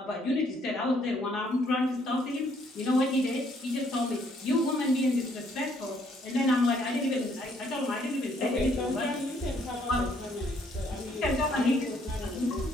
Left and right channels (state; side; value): normal; both; correlation 0.67